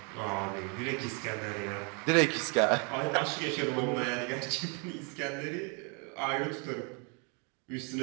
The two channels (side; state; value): left; quieter; 35.1 dB